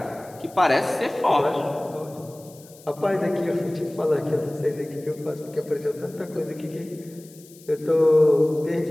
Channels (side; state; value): left; noise; hiss, 23 dB below the sound